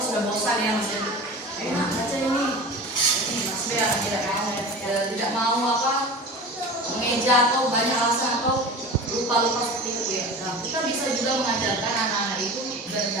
sudah bosan ya maksudnya. kerja atau banyak alasan atau lupa seperti itu ya. Nah, kita bisa juga mengajarkan anak-anak itu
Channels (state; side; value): normal; both; correlation 0.34